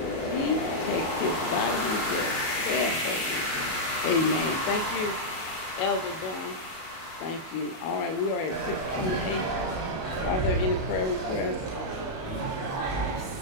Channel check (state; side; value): late; right; 37 ms